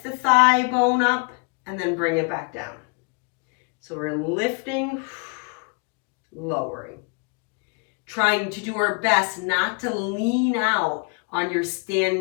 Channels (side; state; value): right; quieter; 34.6 dB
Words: the thigh bone up and then bring it back down. So we're lifting, lowering. Trying to do our best not to lean out on your